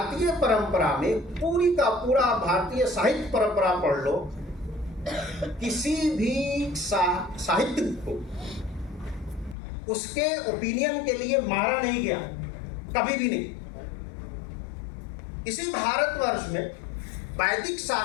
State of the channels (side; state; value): right; drops out; at 9.6 s